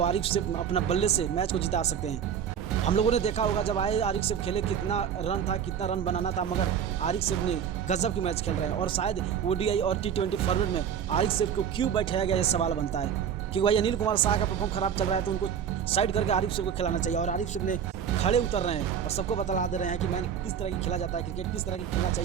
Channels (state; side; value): quieter; left; 8.2 dB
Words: आरिफ सेफ अपना बल्ले से मैच को जिता सकते हैं। हम लोगों ने देखा होगा जब आए आरिफ सेफ खेले कितना रन था, कितना रन बनाना था, मगर आरिफ सेफ ने गजब की मैच खेल रहे हैं। और शायद ओडीआई और T20 फॉर्मेट में आरिफ सेफ को क्यों बैठाया गया ये सवाल बनता है, क्योंकि भाई अनिल कुमार शाह का परफॉर्म खराब चल रहा है तो उनको साइड करके आरिफ सेफ को खिलाना चाहिए। और आरिफ सेफ ने खड़े उतर रहे हैं और सबको बतला दे रहे हैं कि मैंने किस तरह की खेला जाता है, क्रिकेट किस तरह की खेलना